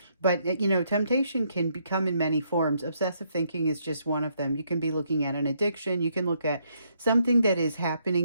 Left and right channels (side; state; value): both; inverted; correlation -0.73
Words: But, you know, temptation can become in many forms. Obsessive thinking is just one of them. You can be looking at an addiction. You can look at something that is